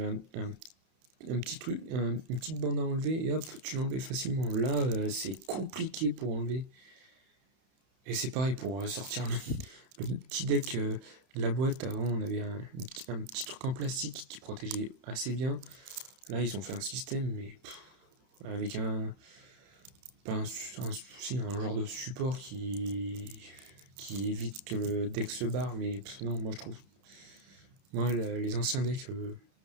un petit truc, une petite bande à enlever et hop, tu l'enlevais facilement. Là, c'est compliqué pour enlever. Et c'est pareil pour sortir le petit deck de la boîte. Avant, on avait un petit truc en plastique qui protégeait assez bien. Là, ils ont fait un système, mais avec un genre de support qui évite que le deck se barre. Mais non, moi je trouve. Moi, les anciens decks.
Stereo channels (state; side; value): late; left; 32 ms